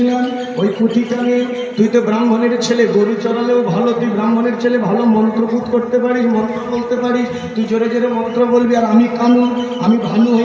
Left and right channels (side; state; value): both; identical; correlation 1.00